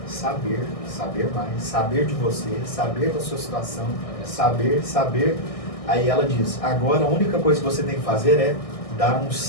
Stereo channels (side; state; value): right; late; 1.6 ms